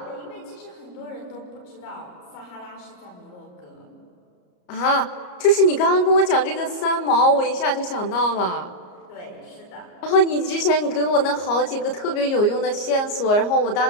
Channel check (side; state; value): right; late; 33 ms